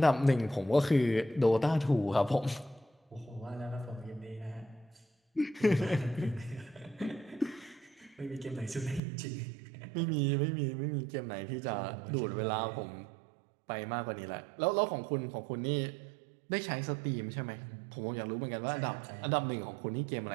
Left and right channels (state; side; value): drops out; left; at 9.0 s